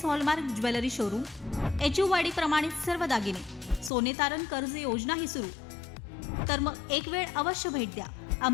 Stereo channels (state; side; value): drops out; right; at 3.9 s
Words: hallmark jewellery showroom, HUID प्रमाणित सर्व दागिने, सोने तारण कर्ज योजनाही सुरू. तर मग एक वेळ अवश्य भेट द्या.